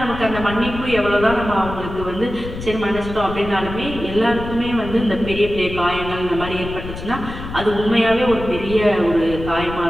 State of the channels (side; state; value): left; noise; rumble, 10 dB below the sound